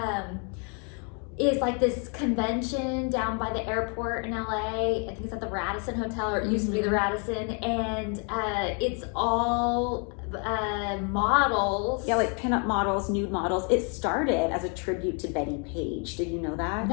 is like this convention down by the airport in LA. I think it's at the Radisson Hotel, or it used to be the Radisson, and it's all models. Yeah, like pinup models, nude models. It started as a tribute to Betty Page. Did you know that?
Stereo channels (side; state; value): right; quieter; 38.2 dB